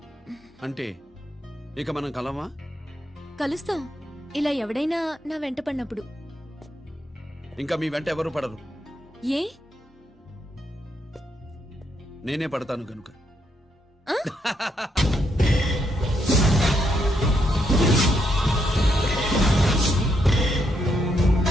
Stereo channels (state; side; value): normal; both; correlation 0.77